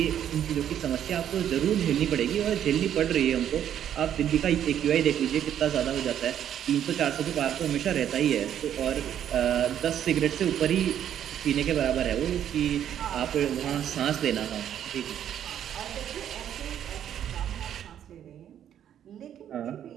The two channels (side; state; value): left; quieter; 10.1 dB